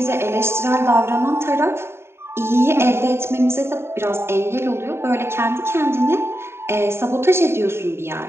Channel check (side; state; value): left; late; 0.12 ms